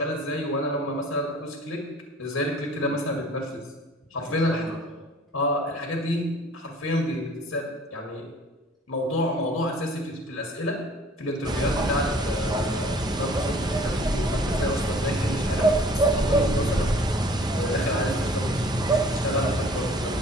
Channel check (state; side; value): normal; both; correlation 0.52